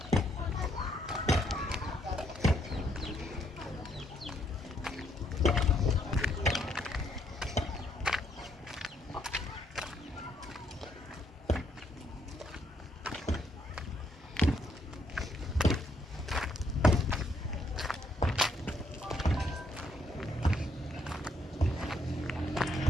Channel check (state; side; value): normal; both; correlation 0.73